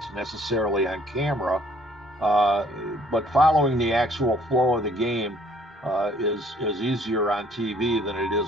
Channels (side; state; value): both; normal; correlation 0.60